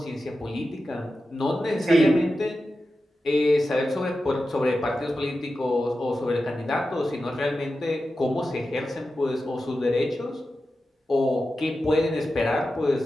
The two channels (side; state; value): both; normal; correlation 0.92